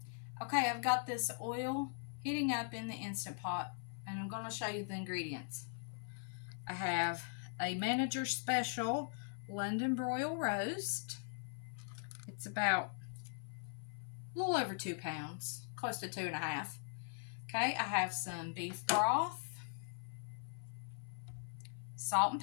Okay, I've got this oil heating up in the Instant Pot, and I'm going to show you the ingredients. I have a Manager Special London broil roast. It's about a little over 2 pounds, close to 2.5. Okay, I have some beef broth, salt and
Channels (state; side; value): silent; right; 51 dB below the other